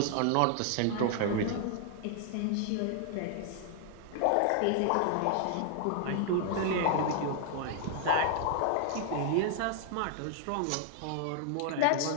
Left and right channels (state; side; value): different; both; correlation 0.00